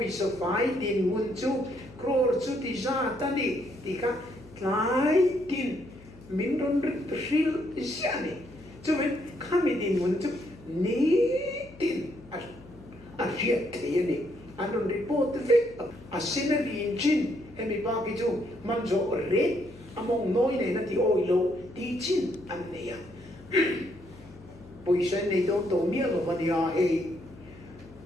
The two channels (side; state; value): left; noise; hum, 21 dB below the sound